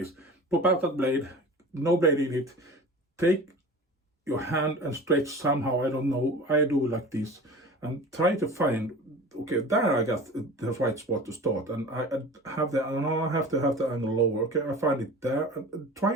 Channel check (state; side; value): normal; both; correlation 0.37